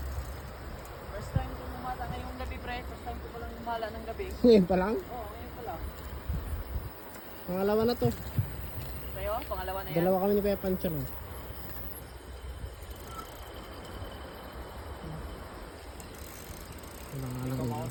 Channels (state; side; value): identical; both; correlation 1.00